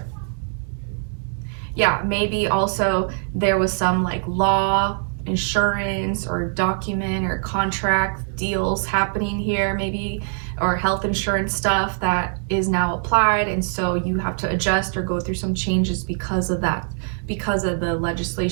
Yeah, maybe also there was some like law, insurance, or document or contract deals happening here, maybe, or health insurance stuff that is now applied, and so you have to adjust or go through some changes because of that, because of the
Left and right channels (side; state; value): left; silent; 64 dB below the other